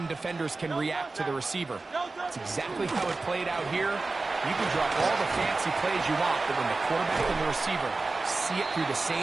defenders can react to the receiver. That's exactly how it played out here. You can drop all the fancy plays you want, but when the quarterback and the receiver see it through the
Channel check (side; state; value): left; quieter; 3.6 dB